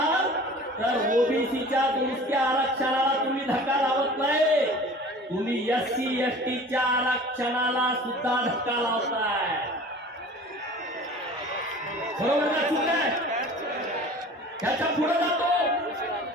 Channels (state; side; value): normal; both; correlation 0.43